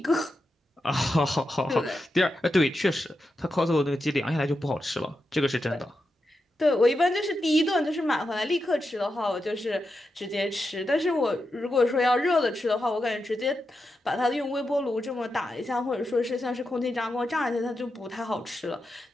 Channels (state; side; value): normal; both; correlation 0.87